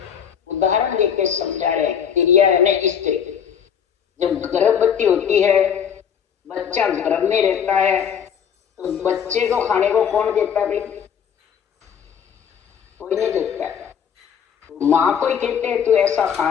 उदाहरण देके समझा रहे, तिरिया यानी स्त्री जब गर्भवती होती है, बच्चा गर्भ में रहता है, तो बच्चे को खाने को कौन देता है भाई? कोई नहीं देता है। माँ को ही कहते हैं तू ऐसा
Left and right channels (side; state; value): right; quieter; 7.9 dB